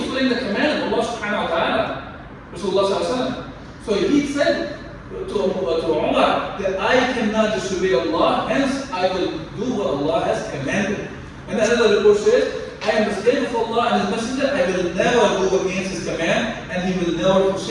the command of Allah subhanahu wa ta'ala, Rasulullah sallallahu alaihi wasallam. So he said to Umar that I cannot disobey Allah, hence I will do what Allah has commanded. And another report says, I am the slave of Allah and His Messenger, I will never go against His command and He will never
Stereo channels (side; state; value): both; identical; correlation 1.00